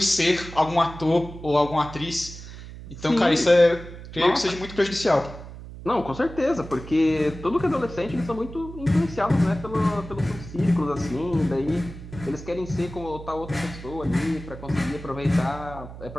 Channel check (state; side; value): noise; right; hum, 13 dB below the sound